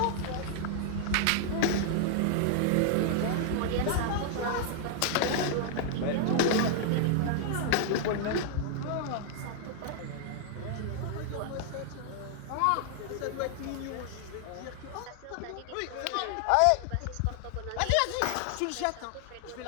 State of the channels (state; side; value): different; both; correlation 0.00